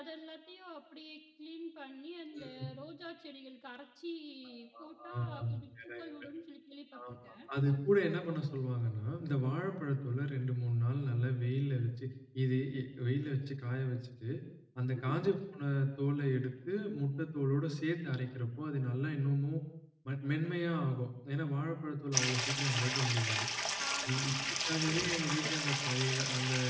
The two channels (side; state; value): both; identical; correlation 1.00